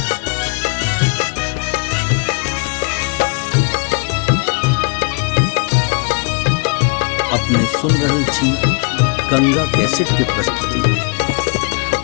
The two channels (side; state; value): right; quieter; 34.1 dB